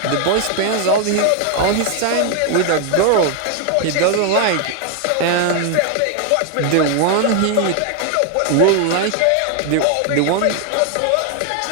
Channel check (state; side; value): different; both; correlation 0.00